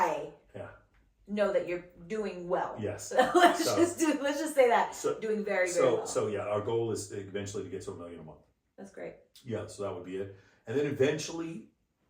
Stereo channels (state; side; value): identical; both; correlation 1.00